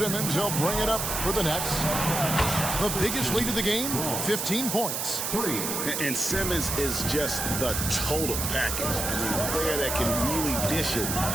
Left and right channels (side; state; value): right; noise; hiss, 2 dB below the sound